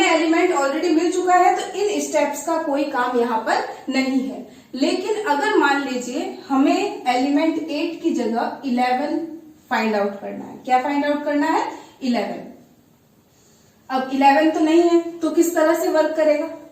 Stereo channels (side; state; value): both; identical; correlation 1.00